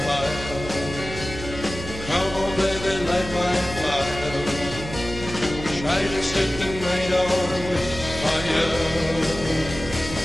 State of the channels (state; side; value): noise; right; hum, 10 dB below the sound